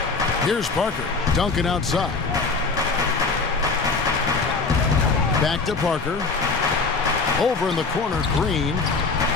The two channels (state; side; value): quieter; right; 4.3 dB